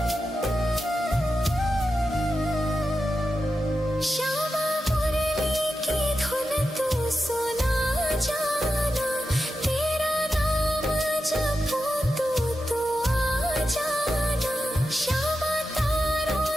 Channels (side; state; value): both; normal; correlation 0.90